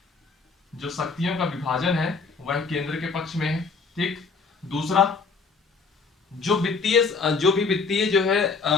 जो शक्तियों का विभाजन है वह केंद्र के पक्ष में है। ठीक, दूसरा, जो भी वित्तीय जो है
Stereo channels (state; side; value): quieter; right; 4.6 dB